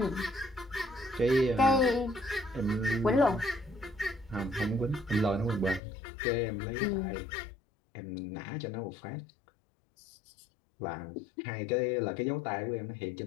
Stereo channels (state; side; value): drops out; right; at 5.8 s